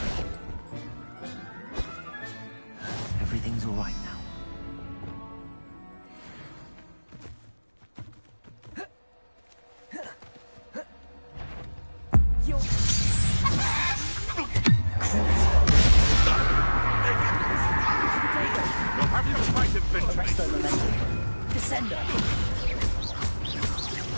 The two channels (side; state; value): both; inverted; correlation -1.00